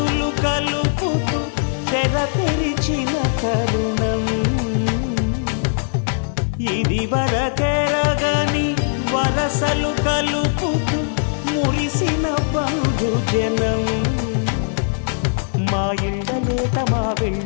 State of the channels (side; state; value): right; silent; digital silence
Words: కలుపుతూ తెర తెరిచిన తరుణం ఇది వరకెరగని వరసలు కలుపుతూ మురిసిన బంధుజనం మా ఇళ్ళలేత మా